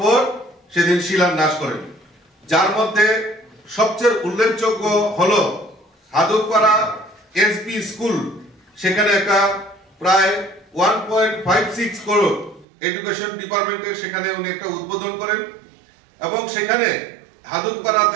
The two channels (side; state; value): left; drops out; at 12.7 s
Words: সেদিন শিলান্যাস করেন, যার মধ্যে সবচেয়ে উল্লেখযোগ্য হলো হাদুকপাড়া এসবি স্কুল। সেখানে একটা প্রায় 1.56 করোড় এডুকেশন ডিপার্টমেন্টের সেখানে উনি একটা উদ্বোধন করেন এবং সেখানে